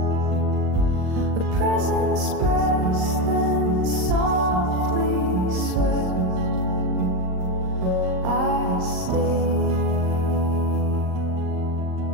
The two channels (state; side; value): late; left; 38 ms